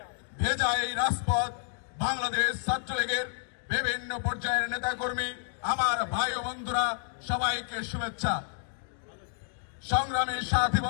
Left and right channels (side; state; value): right; silent; digital silence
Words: ভেজা এই রাজপথ বাংলাদেশ ছাত্রলীগের বিভিন্ন পর্যায়ের নেতাকর্মী আমার ভাই ও বন্ধুরা সবাইকে শুভেচ্ছা। সংগ্রামী সাথী